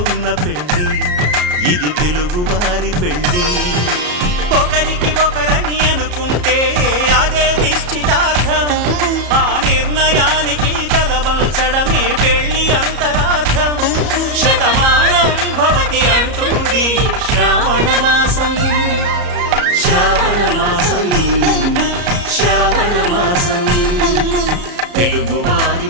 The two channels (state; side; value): late; left; 34 ms